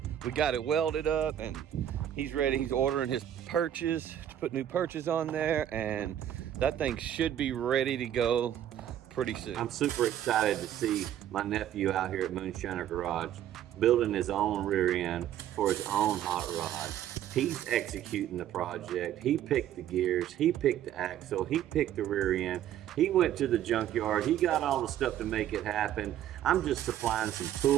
we got it welded up, and he's ready. He's ordering his perches to put new perches on there, and that thing should be ready to go pretty soon. I'm super excited to see my nephew out here at Moonshiner Garage building his own rear end for his own hot rod. He's executing the project. He picked the gears, he picked the axle, he picked the rear end. He went to the junkyard, he got all the stuff to make it happen. I'm just supplying some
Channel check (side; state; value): left; quieter; 11.1 dB